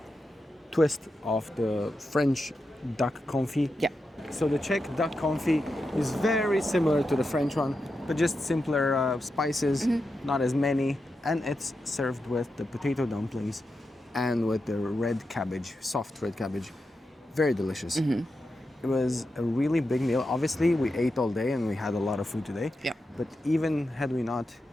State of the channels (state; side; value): normal; both; correlation 0.88